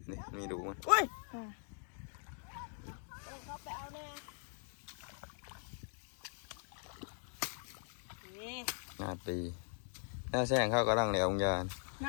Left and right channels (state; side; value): silent; right; 51 dB below the other